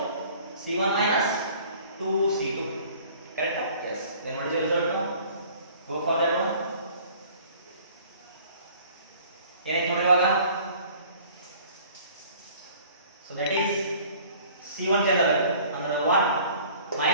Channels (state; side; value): inverted; both; correlation -0.51